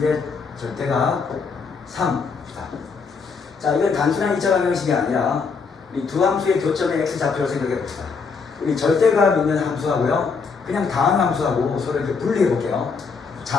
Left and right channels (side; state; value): right; quieter; 5.1 dB